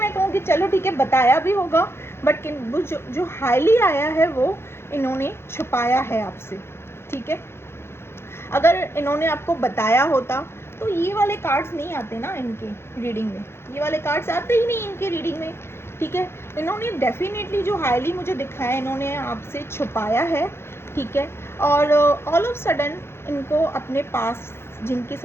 कहूँ कि चलो ठीक है बताया भी होगा, बट वो जो हाईली आया है वो इन्होंने छुपाया है आपसे, ठीक है। अगर इन्होंने आपको बताया होता तो ये वाले कार्ड्स नहीं आते ना इनके रीडिंग में, ये वाले कार्ड्स आते ही नहीं इनके रीडिंग में, ठीक है। इन्होंने डेफिनेटली जो हाईली मुझे दिखाया इन्होंने आपसे छुपाया है, ठीक है। और ऑल ऑफ सडन इनको अपने पास जिनके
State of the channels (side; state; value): right; late; 0.12 ms